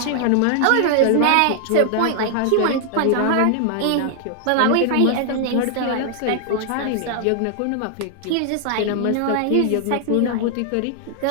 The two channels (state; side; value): different; both; correlation 0.00